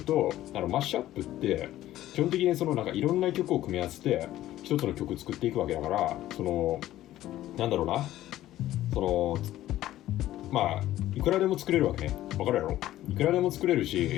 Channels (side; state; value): right; quieter; 14.2 dB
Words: と、マッシュアップって基本的にいろんな曲を組み合わせて一つの曲作っていくわけだから、なんだろうな、いくらでも作れるわけね。わかるやろ？いくらでも作れるし、